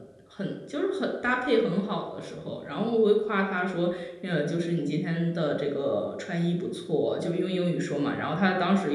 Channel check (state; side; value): identical; both; correlation 1.00